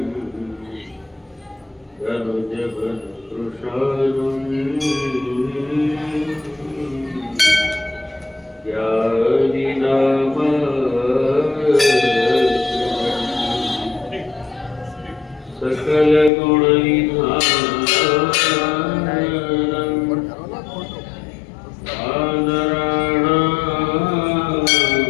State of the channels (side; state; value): right; drops out; at 16.3 s